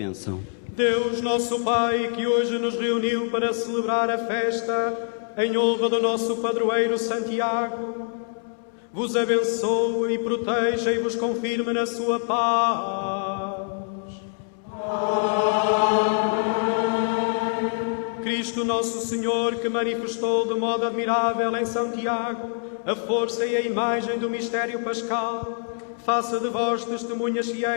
Deus, nosso Pai, que hoje nos reuniu para celebrar a festa em honra do nosso padroeiro Santiago, vos abençoe e proteja e vos confirme na sua paz. Cristo nosso Senhor, que manifestou de modo admirável em São Tiago a força e a imagem do mistério pascal, faça de vós testemunhas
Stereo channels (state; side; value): silent; right; digital silence